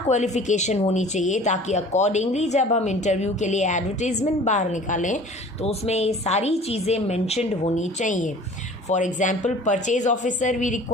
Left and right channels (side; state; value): both; normal; correlation 0.46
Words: क्वालिफिकेशन होनी चाहिए, ताकि अकॉर्डिंगली जब हम इंटरव्यू के लिए एडवर्टीजमेंट बाहर निकालें तो उसमें ये सारी चीज़ें मेंशन्ड होनी चाहिए. For example, purchase officer we